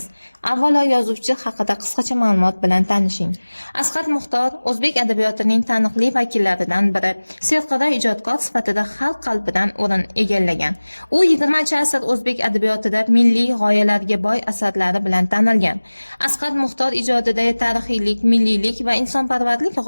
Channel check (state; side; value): inverted; both; correlation -1.00